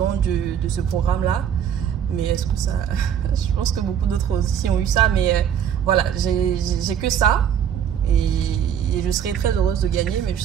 de ce programme-là. Mais est-ce que ça... je pense que beaucoup d'autres aussi ont eu ça. Mais voilà, j'ai que ça. Et je serais très heureuse de gagner, mais je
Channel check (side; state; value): left; quieter; 8.9 dB